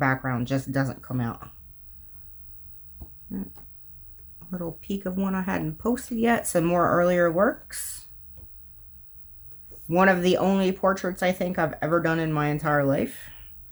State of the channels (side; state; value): both; identical; correlation 1.00